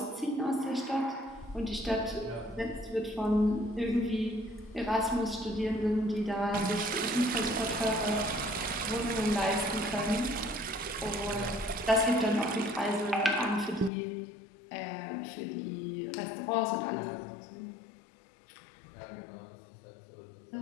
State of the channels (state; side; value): drops out; right; at 13.9 s